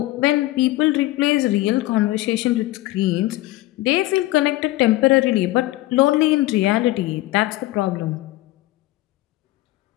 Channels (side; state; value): right; quieter; 17.7 dB